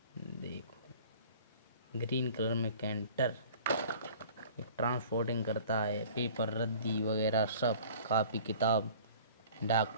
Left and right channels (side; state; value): both; inverted; correlation -0.47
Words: देखो ग्रीन कलर में कैंटर। ये ट्रांसपोर्टिंग करता है, पेपर, रद्दी वगैरह सब, कापी किताब,